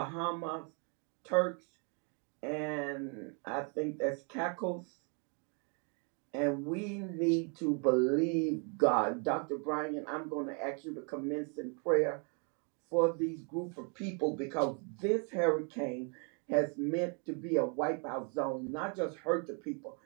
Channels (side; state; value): left; quieter; 37.9 dB